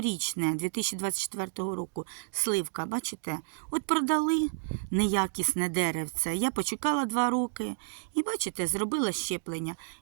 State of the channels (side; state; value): left; silent; digital silence